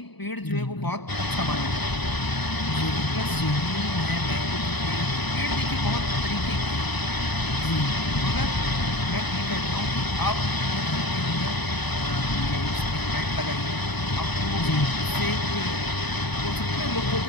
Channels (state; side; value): late; right; 0.99 ms